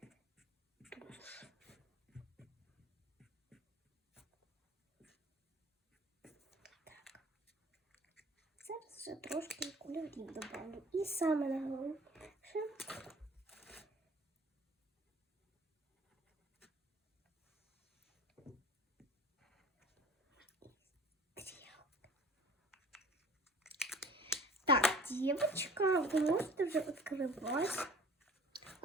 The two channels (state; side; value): normal; both; correlation 0.47